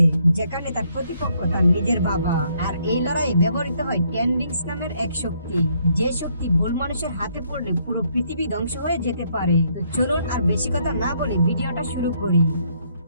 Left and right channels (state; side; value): inverted; both; correlation -0.70